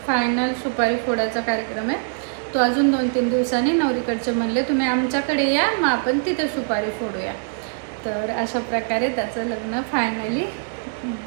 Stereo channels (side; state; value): left; silent; digital silence